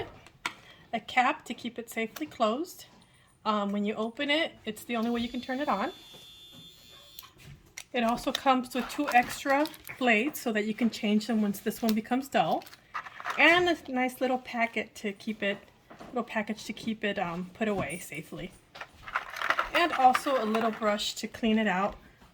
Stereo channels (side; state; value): both; identical; correlation 1.00